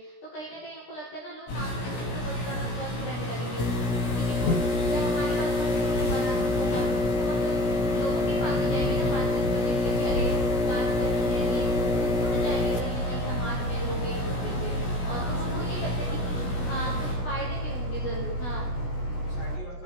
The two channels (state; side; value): late; right; 17 ms